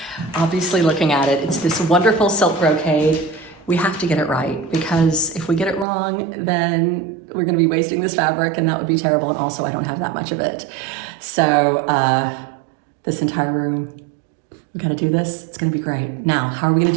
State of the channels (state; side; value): drops out; left; at 5.9 s